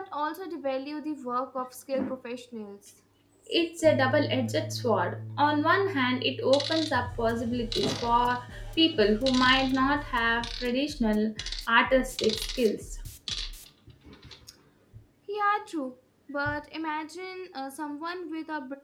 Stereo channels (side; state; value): both; identical; correlation 1.00